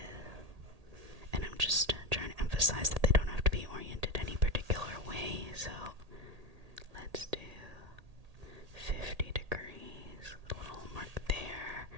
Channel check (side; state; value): left; late; 1.8 ms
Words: And I'm just trying to emphasize that they don't have to be oriented any particular way. So let's do 50 degrees, a little mark there,